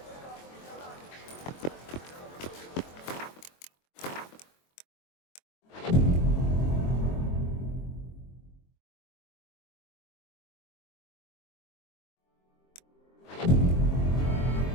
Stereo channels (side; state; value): right; late; 23 ms